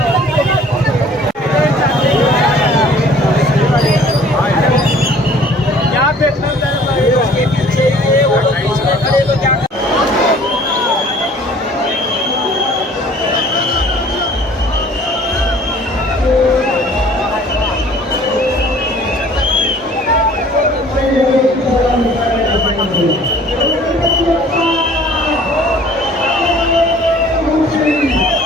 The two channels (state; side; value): normal; both; correlation 0.52